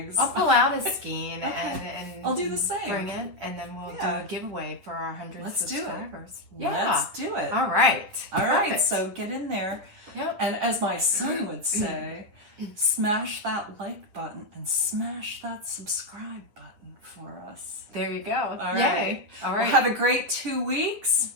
I'll pull out a skein and I'll do the same. Bring it, and then we'll do a giveaway for our 100 subscribers. Let's do it. All right. All right. So get in there. Yep. And as my son would say, smash that like button and smash that subscribe button for us. There you go. All right. Yay. All right. Well, have a great 2 weeks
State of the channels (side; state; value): left; late; 9.9 ms